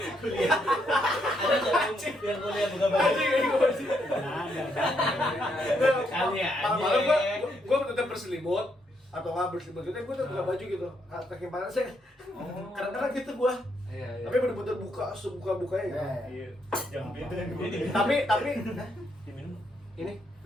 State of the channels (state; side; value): normal; both; correlation 0.76